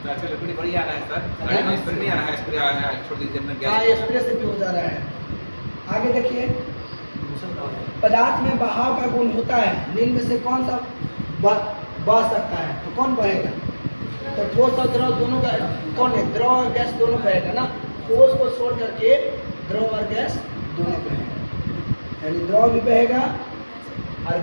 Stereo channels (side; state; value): both; inverted; correlation -1.00